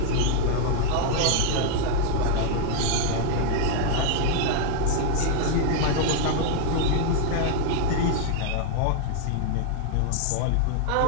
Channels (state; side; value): different; both; correlation 0.00